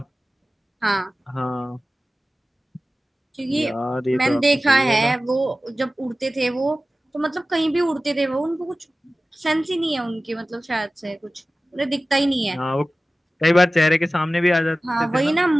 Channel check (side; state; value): both; normal; correlation 0.96